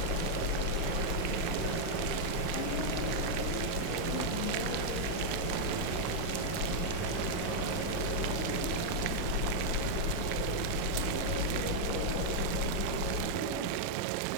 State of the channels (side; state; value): both; different; correlation -0.01